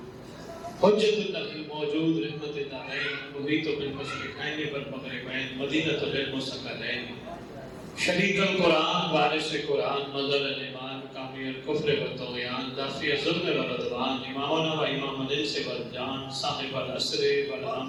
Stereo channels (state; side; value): identical; both; correlation 1.00